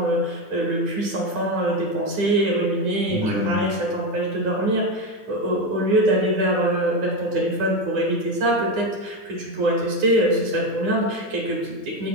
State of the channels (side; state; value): left; late; 9.8 ms